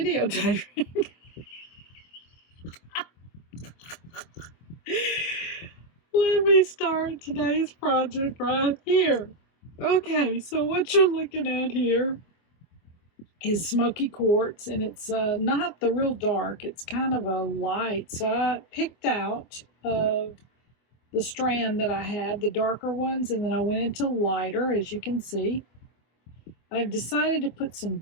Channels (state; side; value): late; right; 24 ms